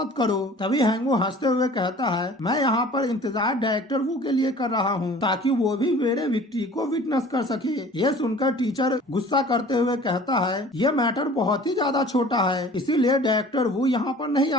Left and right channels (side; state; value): both; normal; correlation 0.46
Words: करो। तभी हैंगवू हंसते हुए कहता है मैं यहाँ पर इंतजार डायरेक्टर वू के लिए कर रहा हूँ ताकि वो भी मेरे विक्ट्री को विटनेस कर सके। ये सुनकर टीचर गुस्सा करते हुए कहता है ये मैटर बहुत ही ज्यादा छोटा है, इसीलिए डायरेक्टर वू यहाँ पर नहीं